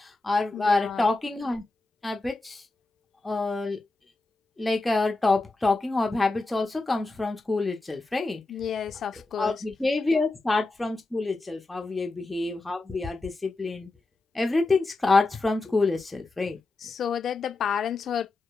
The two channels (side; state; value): right; quieter; 3.3 dB